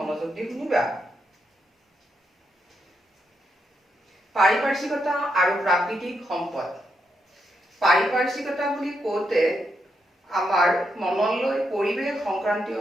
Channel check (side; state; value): both; normal; correlation 0.81